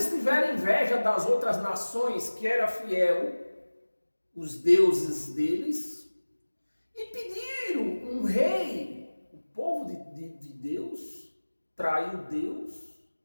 tiveram inveja das outras nações que eram fiel, os deuses deles, e pediram um rei. O povo de Deus traiu Deus,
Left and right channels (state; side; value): inverted; both; correlation -1.00